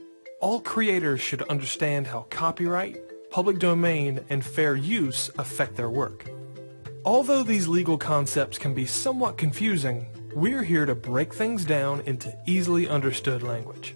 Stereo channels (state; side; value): inverted; both; correlation -1.00